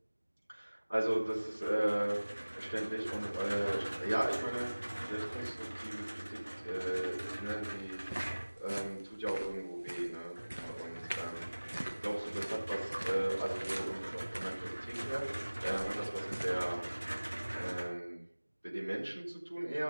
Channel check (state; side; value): inverted; both; correlation -1.00